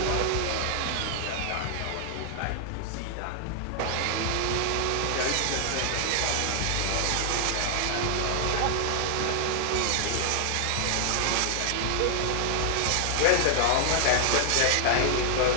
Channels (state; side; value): different; both; correlation 0.00